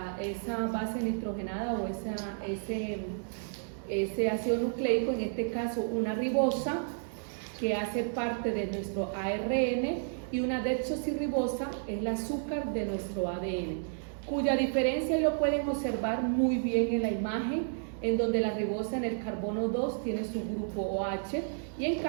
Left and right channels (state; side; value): silent; left; digital silence